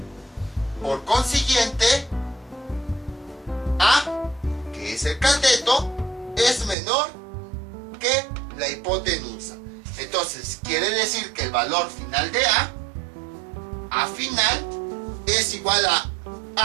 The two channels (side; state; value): left; drops out; at 6.8 s